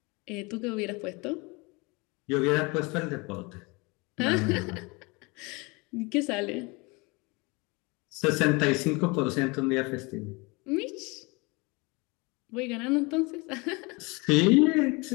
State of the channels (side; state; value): right; quieter; 27.0 dB